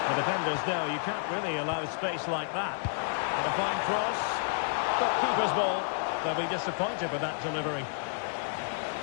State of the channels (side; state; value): right; silent; digital silence